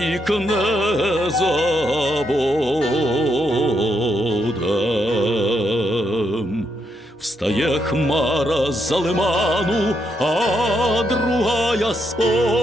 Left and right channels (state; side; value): normal; both; correlation 0.78